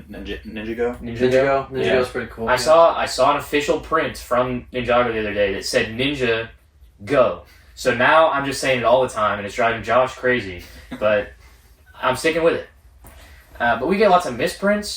Ninjago. Ninjago's Yeah. pretty cool. I saw an official print from Ninjago the other day that said Ninja Go. So now I'm just saying it all the time, and it's driving Josh crazy. But I'm sticking with it. But we get lots of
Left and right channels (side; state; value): both; identical; correlation 1.00